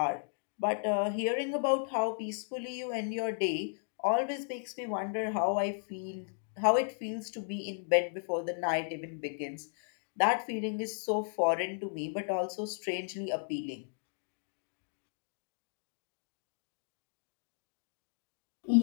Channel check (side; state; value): right; silent; digital silence